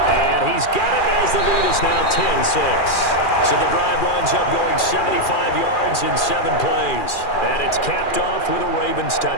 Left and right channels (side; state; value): right; late; 2.4 ms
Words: And he's got it as the lead is now 10-6. So the drive winds up going 75 yards in 7 plays. And it's capped off with a Ravens